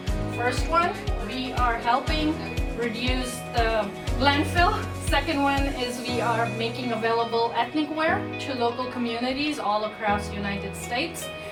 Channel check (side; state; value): both; identical; correlation 1.00